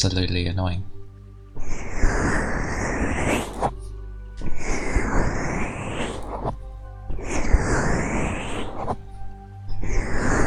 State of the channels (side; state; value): both; identical; correlation 1.00